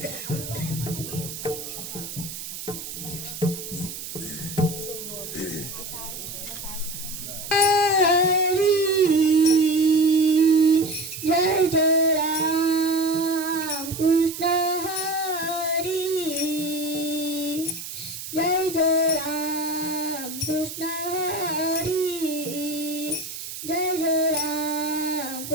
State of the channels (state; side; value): noise; right; hiss, 9 dB below the sound